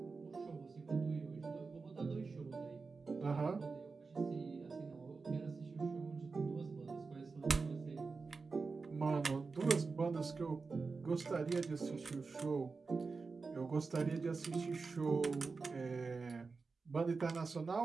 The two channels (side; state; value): left; quieter; 4.4 dB